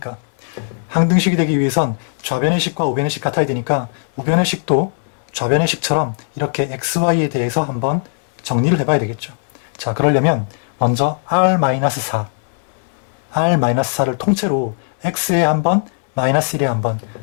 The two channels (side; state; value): right; silent; 64 dB below the other